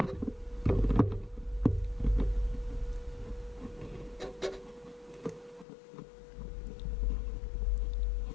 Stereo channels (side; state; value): right; drops out; at 5.7 s